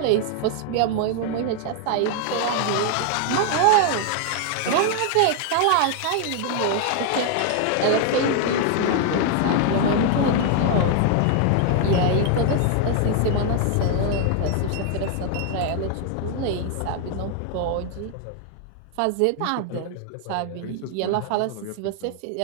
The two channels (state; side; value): different; both; correlation 0.00